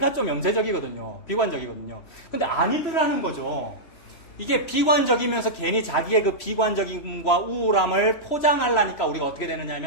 좀 염세적이거든요. 비관적이거든요. 근데 아니더라는 거죠. 이게 비관적이면서 괜히 자기의 그 비관적임과 우울함을 포장하려니까 우리가 어떻게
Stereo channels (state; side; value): late; right; 3.0 ms